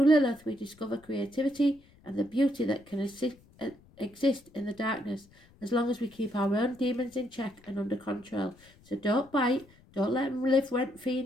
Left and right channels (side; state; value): left; noise; rumble, 27 dB below the sound